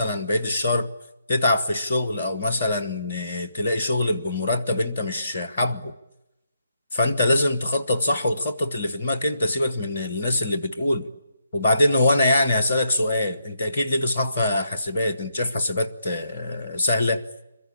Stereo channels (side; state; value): both; inverted; correlation -0.78